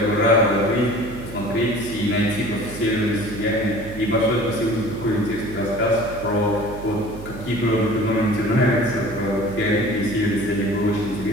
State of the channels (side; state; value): right; noise; hum, 13 dB below the sound